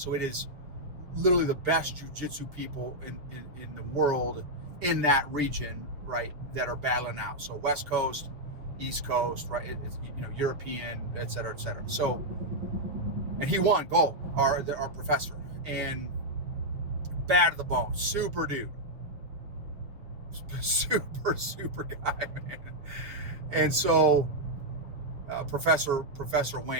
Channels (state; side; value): late; left; 6.5 ms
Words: it is literally the best jiu-jitsu people in the world in that region, right, that are battling out. So West Coast, East Coast, right, European, et cetera, et cetera. So, and he won gold, our professor, and bad to the bone, super dude, super guy, man. And so Professor